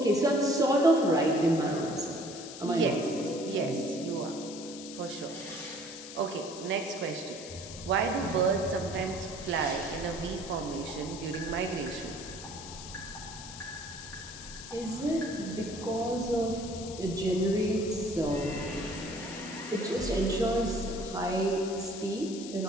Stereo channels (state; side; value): noise; left; hiss, 12 dB below the sound